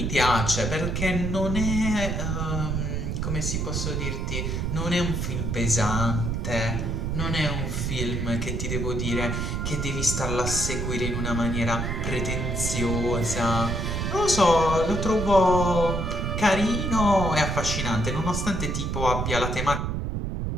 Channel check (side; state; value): right; noise; rumble, 1 dB below the sound